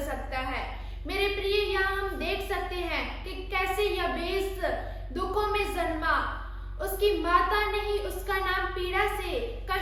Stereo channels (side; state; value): both; identical; correlation 1.00